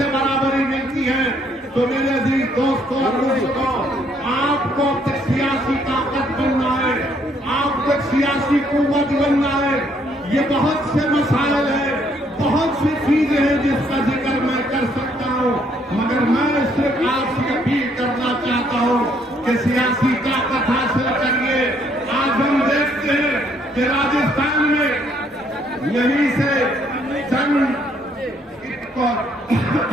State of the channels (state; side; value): normal; both; correlation 0.68